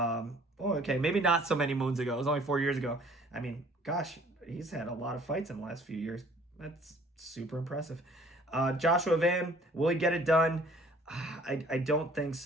not so many moons ago. It was only 4 years ago. He's had a lot of fights in the last few years. That's super impressive. Joshua Van, will he get it done? I don't think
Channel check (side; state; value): both; normal; correlation 0.55